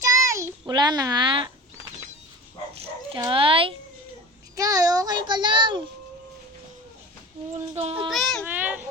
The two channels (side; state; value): both; normal; correlation 0.35